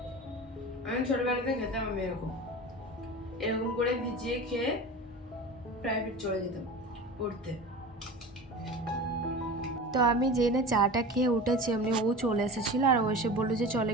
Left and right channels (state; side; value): normal; both; correlation 0.33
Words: আমি ছোটবেলাতে খেতাম, আমি এরকম এরকম করে ভিজিয়ে খেয়ে প্রাইভেট চলে যেতাম পড়তে। তো আমি জেনে চাটা খেয়ে উঠেছি, এমনি ও চলে এসেছিলো, আর ও এসে বললো যে চল